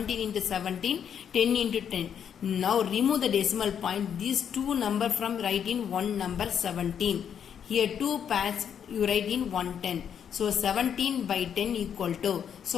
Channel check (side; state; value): right; quieter; 8.3 dB